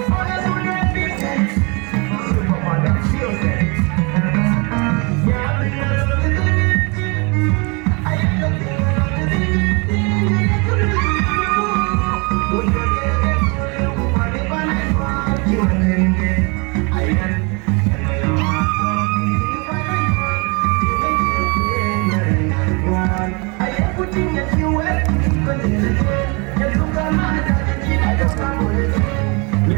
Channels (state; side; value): quieter; left; 30.7 dB